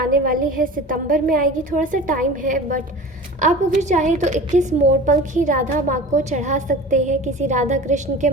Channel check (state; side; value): normal; both; correlation 0.37